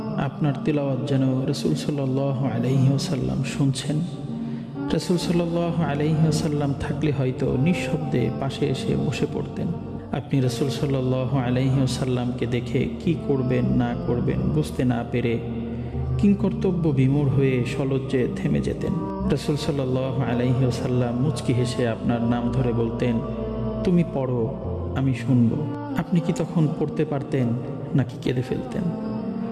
আপনার তেলাওয়াত যেন রাসূল সাল্লাল্লাহু আলাইহি ওয়াসাল্লাম শুনছেন। রাসূল সাল্লাল্লাহু আলাইহি ওয়াসাল্লাম থাকলে হয়তো নিঃশব্দে পাশে এসে বসে পড়তেন। আপনি রাসূল সাল্লাল্লাহু আলাইহি ওয়াসাল্লামকে দেখে কি করবেন না করবেন বুঝতে না পেরে কিংকর্তব্য বিমূঢ় হয়ে সলজ্জে থেমে যেতেন। রাসূল সাল্লাল্লাহু আলাইহি ওয়াসাল্লাম মুচকি হেসে আপনার নাম ধরে বলতেন, তুমি পড়ো, আমি শুনব। আপনি কি তখন পড়তে পারতেন নাকি কেঁদে ফেলতেন?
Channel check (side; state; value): both; identical; correlation 1.00